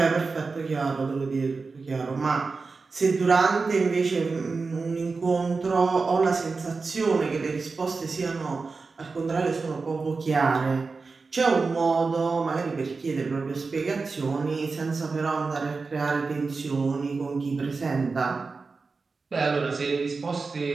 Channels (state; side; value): quieter; left; 4.3 dB